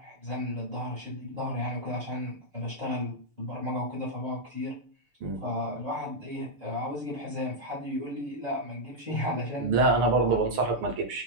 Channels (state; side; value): late; left; 6.8 ms